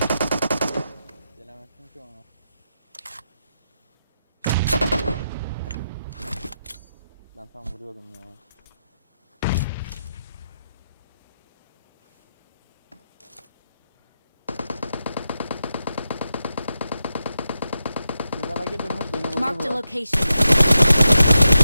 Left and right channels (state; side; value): inverted; both; correlation -0.87